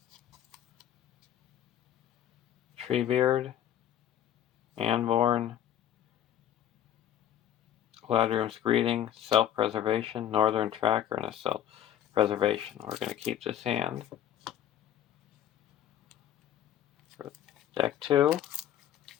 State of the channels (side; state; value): right; quieter; 10.9 dB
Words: Treebeard, Anborn, Galadriel's Greeting, Self-Preservation, Northern Tracker, and a Self-Preservation. We're going to keep this hand. For deck 2,